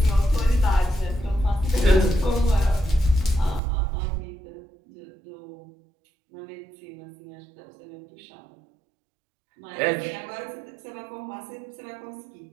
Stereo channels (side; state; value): left; drops out; at 3.6 s